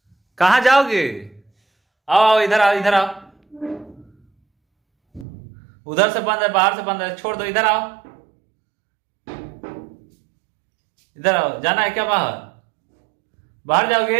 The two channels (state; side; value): drops out; left; at 5.2 s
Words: कहाँ जाओगे? आओ इधर आओ, इधर आओ। उधर से बंद है, बाहर से बंद है, छोड़ दो, इधर आओ, इधर आओ। जाना है क्या बाहर? बाहर